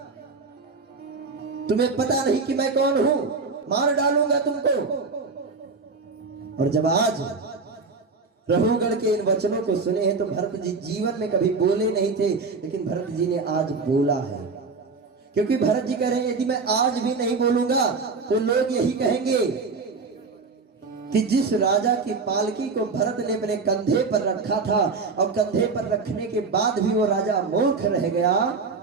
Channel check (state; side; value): quieter; left; 4.4 dB